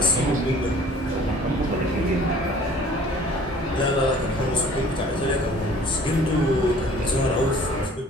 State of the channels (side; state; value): both; normal; correlation 0.51